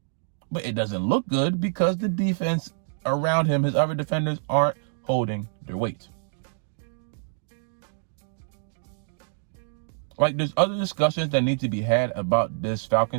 But it doesn't look good because the defense around him, his other defenders, aren't holding their weight. Like, there's other discussions that need to be had about this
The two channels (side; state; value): left; silent; digital silence